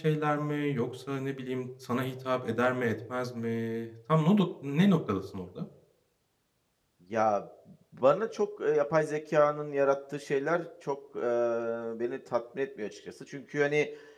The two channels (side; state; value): both; identical; correlation 1.00